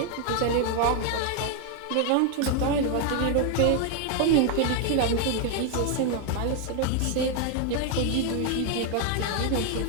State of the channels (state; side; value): different; both; correlation 0.00